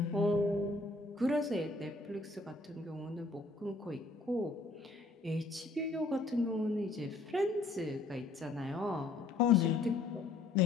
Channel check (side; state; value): right; quieter; 3.3 dB